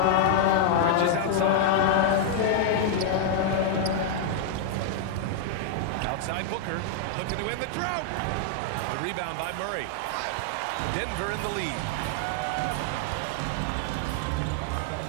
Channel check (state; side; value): different; both; correlation -0.01